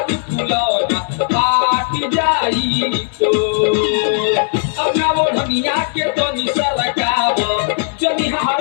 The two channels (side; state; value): right; silent; digital silence